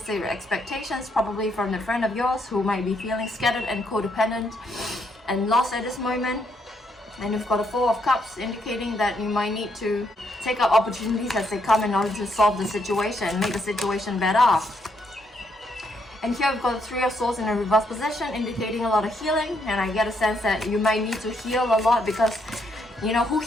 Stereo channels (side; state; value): both; normal; correlation 0.74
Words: expectations, probably from a friend of yours who might be feeling scattered and codependent and lost at this moment. And we've got a Four of Cups, indicating that you might need to take up opportunities as they come in order to solve the situation, make the situation better. And here we've got the Three of Swords in a reverse position, indicating a lot of healing. And I get a sense that you might need to heal a lot, because you know who